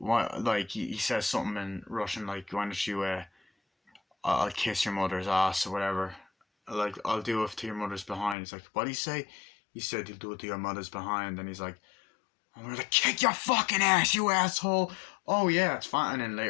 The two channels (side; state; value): right; drops out; at 8.3 s